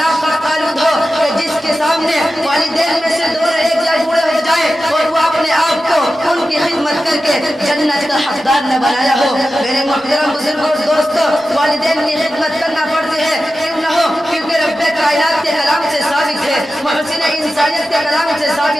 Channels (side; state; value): both; normal; correlation 0.93